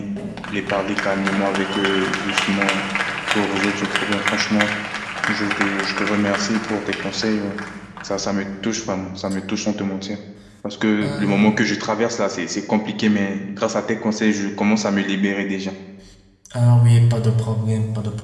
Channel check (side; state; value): both; identical; correlation 1.00